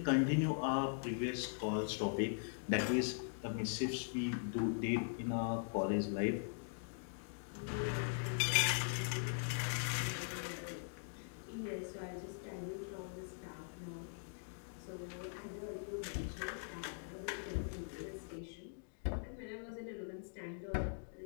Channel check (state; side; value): silent; right; digital silence